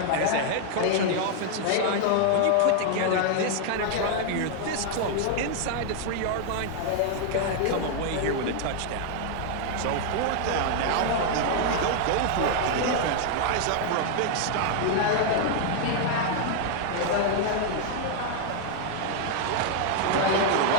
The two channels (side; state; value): both; different; correlation 0.00